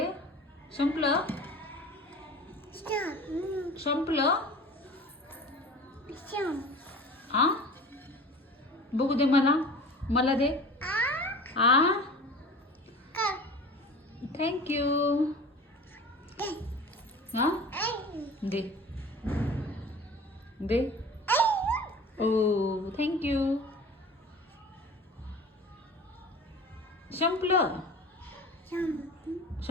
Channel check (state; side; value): normal; both; correlation 0.39